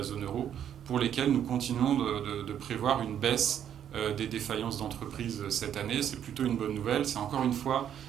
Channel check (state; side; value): quieter; left; 9.6 dB